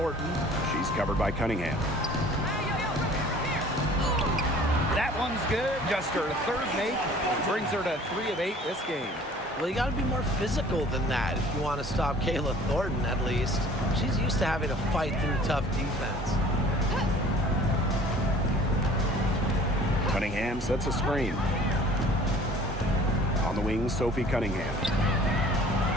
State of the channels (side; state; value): both; normal; correlation 0.50